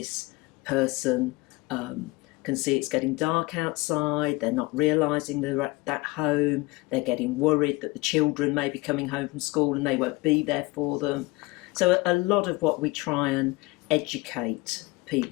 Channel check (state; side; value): quieter; right; 22.8 dB